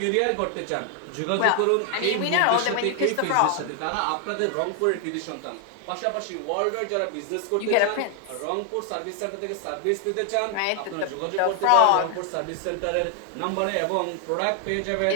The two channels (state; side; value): different; both; correlation 0.00